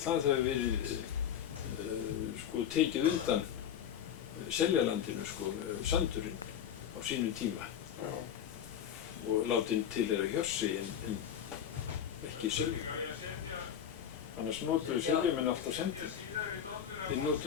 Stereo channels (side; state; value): right; quieter; 9.1 dB